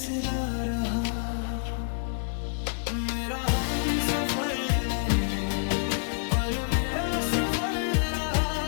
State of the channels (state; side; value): silent; right; digital silence